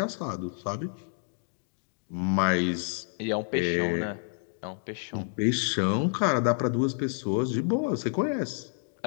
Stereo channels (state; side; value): silent; right; 58 dB below the other